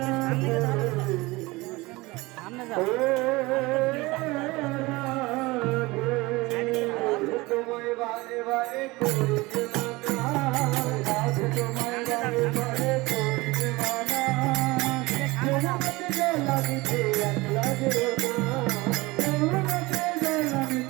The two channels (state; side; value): quieter; left; 22.1 dB